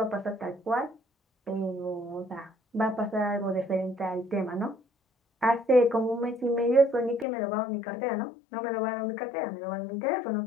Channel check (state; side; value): drops out; right; at 7.2 s